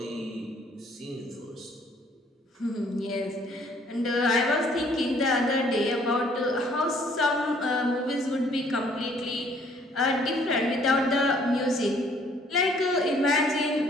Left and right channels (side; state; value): both; normal; correlation 0.61